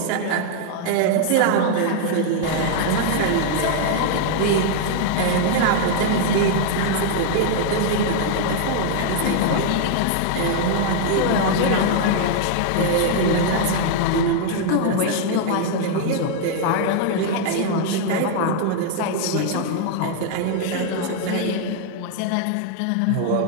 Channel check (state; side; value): different; both; correlation 0.00